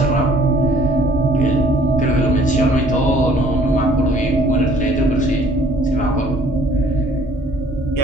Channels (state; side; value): normal; both; correlation 0.57